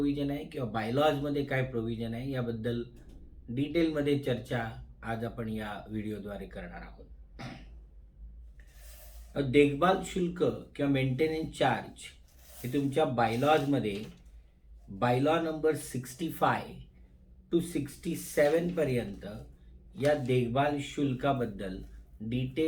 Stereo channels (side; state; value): both; identical; correlation 1.00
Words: आहे किंवा बायलॉजमध्ये काय प्रोव्हिजन आहे याबद्दल डिटेलमध्ये चर्चा आज आपण या व्हिडिओद्वारे करणार आहोत. देखभाल शुल्क किंवा मेंटेनन्स चार्ज हे तुमच्या बायलॉजमध्ये बायलॉ नंबर 65 to 67 पर्यंत या देखभाल शुल्काबद्दल